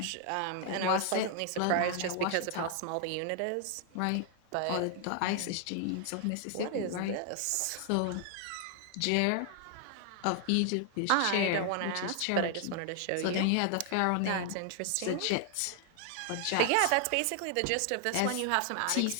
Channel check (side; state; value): both; different; correlation 0.00